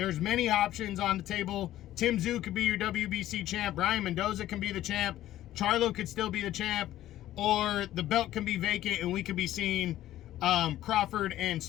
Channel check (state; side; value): quieter; right; 13.7 dB